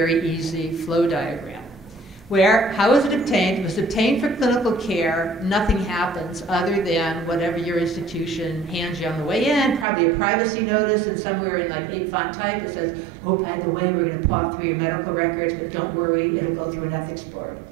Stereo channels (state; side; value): drops out; left; at 9.9 s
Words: easy flow diagram. How was it obtained? It was obtained for clinical care. Nothing happens other than whatever your institution hands you on the way in, probably a privacy notice, and somewhere in like 8-font type it says, oh, by the way, we're going to paw through your medical records, but don't worry, it'll go through an ethics board.